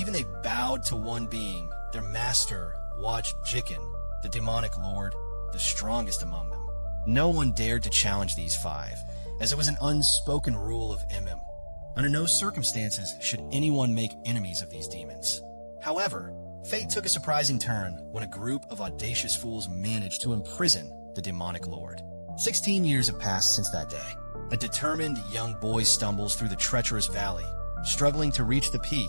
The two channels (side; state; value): both; inverted; correlation -1.00